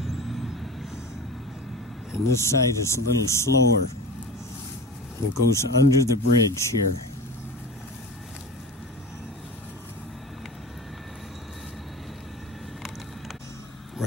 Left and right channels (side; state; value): both; normal; correlation 0.32